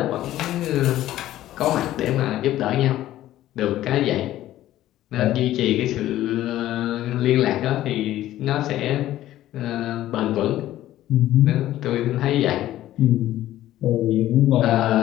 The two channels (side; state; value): right; quieter; 13.9 dB